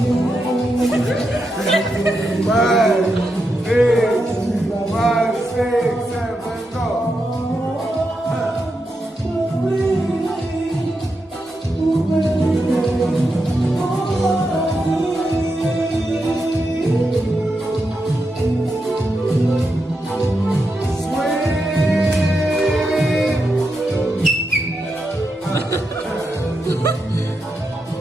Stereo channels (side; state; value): both; normal; correlation 0.86